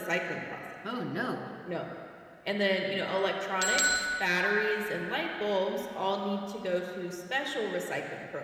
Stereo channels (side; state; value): both; identical; correlation 1.00